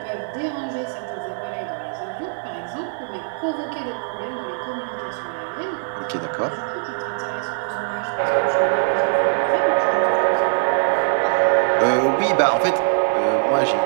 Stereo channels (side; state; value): left; silent; digital silence